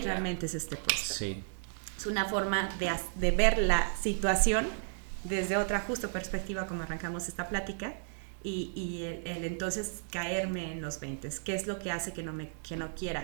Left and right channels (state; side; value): silent; left; digital silence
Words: es este puesto? Sí. Es una forma de ver la situación desde otra justo perspectiva como arrancamos esta plática y el entonces caerme en los 20. ¿Qué es lo que hace que no